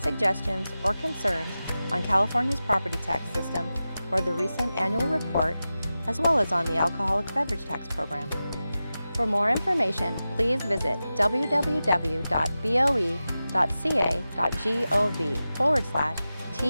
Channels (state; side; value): inverted; both; correlation -0.94